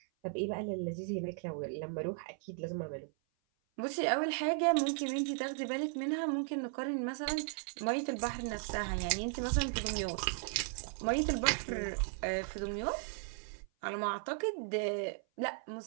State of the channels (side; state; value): left; silent; 54 dB below the other